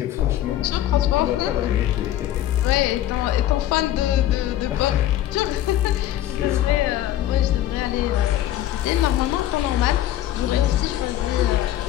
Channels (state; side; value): quieter; right; 13.1 dB